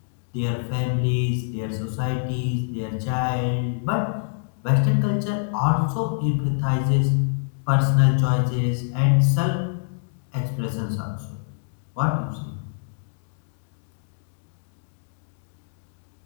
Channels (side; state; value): right; silent; digital silence